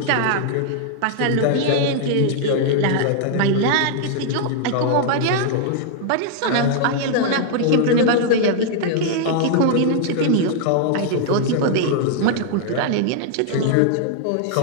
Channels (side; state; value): both; different; correlation 0.00